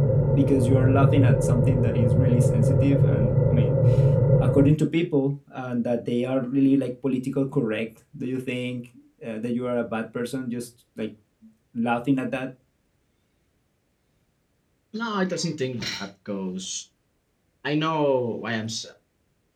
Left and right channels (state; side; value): identical; both; correlation 1.00